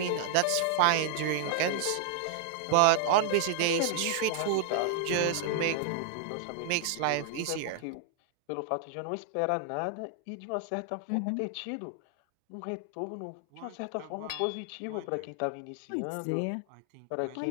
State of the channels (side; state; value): both; different; correlation 0.00